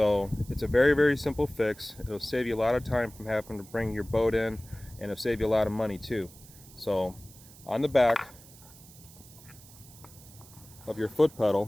it's a very simple fix. It'll save you a lot of time from having to bring your boat in, and it'll save you a lot of money too. So on the back of your foot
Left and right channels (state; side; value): noise; right; hiss, 21 dB below the sound